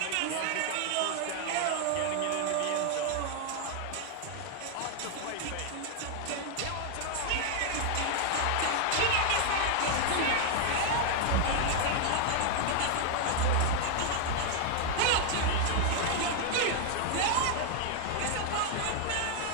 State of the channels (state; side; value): different; both; correlation 0.00